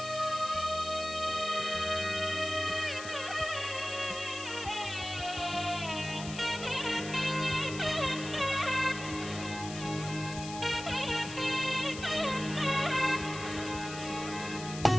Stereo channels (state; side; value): noise; left; hiss, 11 dB below the sound